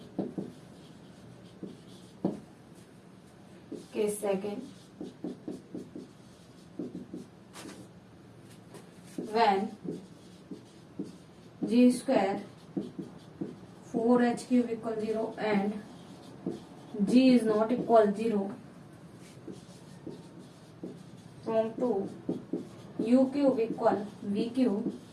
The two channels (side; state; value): both; identical; correlation 1.00